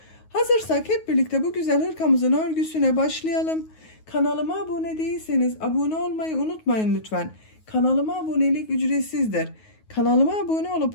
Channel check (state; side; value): late; right; 9.4 ms